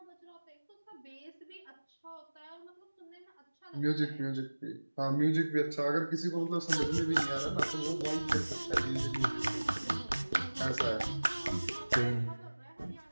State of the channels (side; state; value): both; inverted; correlation -1.00